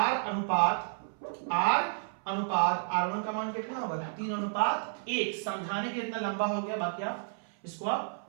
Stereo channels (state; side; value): silent; left; 57 dB below the other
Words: अनुपात r1 का मान कितना होगा 3/1। समझाने के इतना लंबा हो गया, बाकी आप इसको आप